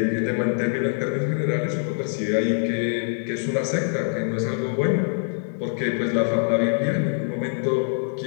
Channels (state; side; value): silent; right; 63 dB below the other